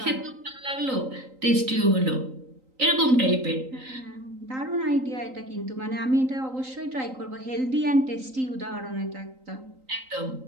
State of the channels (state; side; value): late; left; 3.9 ms